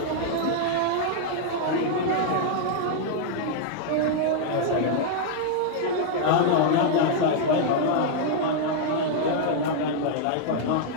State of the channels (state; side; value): different; both; correlation -0.01